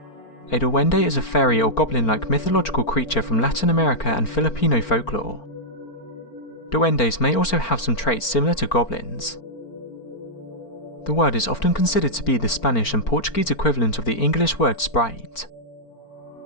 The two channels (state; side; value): late; right; 4.4 ms